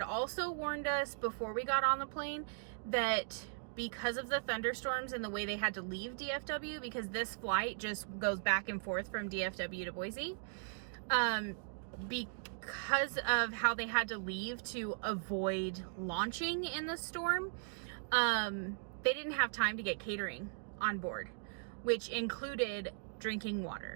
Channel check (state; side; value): silent; left; digital silence